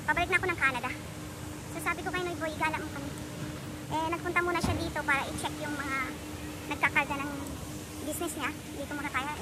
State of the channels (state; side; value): identical; both; correlation 1.00